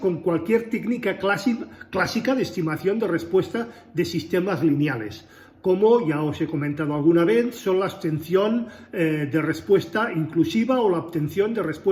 cualquier técnica clásica de estimación de respuesta de sistemas lineales, como ya os he comentado alguna vez, son la obtención de respuesta inclusiva o la obtención de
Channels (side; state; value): both; identical; correlation 1.00